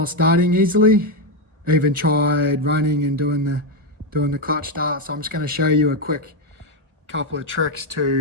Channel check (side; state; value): left; late; 1.4 ms